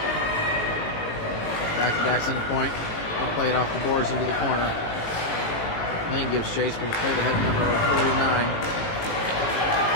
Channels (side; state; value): right; late; 18 ms